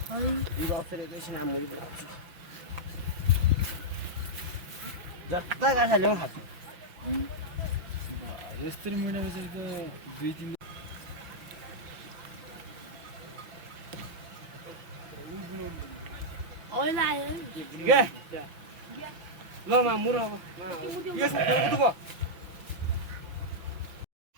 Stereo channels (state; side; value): late; left; 6.0 ms